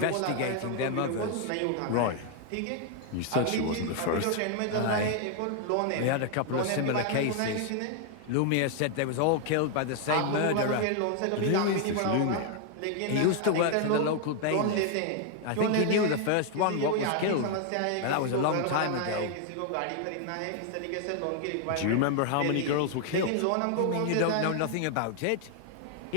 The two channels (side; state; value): both; different; correlation 0.00